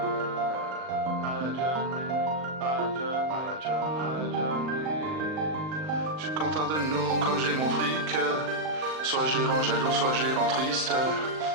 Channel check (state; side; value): late; left; 39 ms